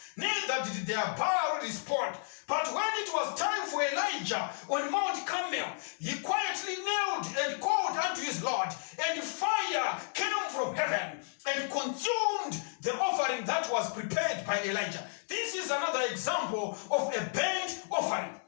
Neither did their Baal respond. But when it was time for Elijah on Mount Carmel, he quietly knelt and called unto his Lord, and fire came from heaven and consumed the offering that was prepared by Elijah. This is another example of a burnt offering.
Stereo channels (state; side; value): silent; right; digital silence